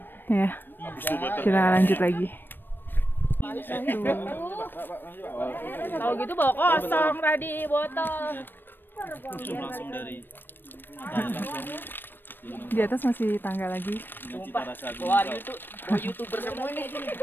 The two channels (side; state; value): right; late; 0.095 ms